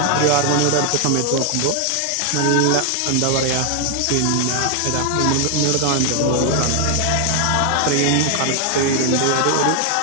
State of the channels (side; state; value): both; different; correlation 0.00